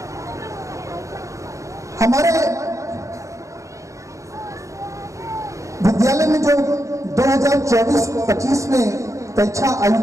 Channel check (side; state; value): left; late; 0.15 ms